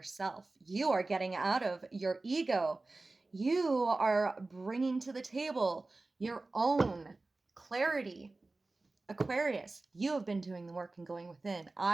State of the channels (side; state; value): left; quieter; 3.3 dB